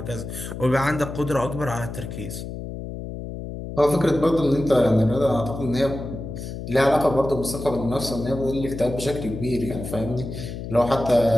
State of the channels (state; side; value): noise; left; hum, 8 dB below the sound